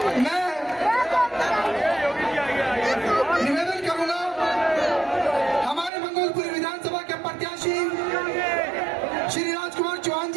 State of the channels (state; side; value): drops out; left; at 5.9 s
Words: मैं निवेदन करूंगा हमारे मंगोलपुरी विधानसभा के प्रत्याशी श्री राजकुमार चौहान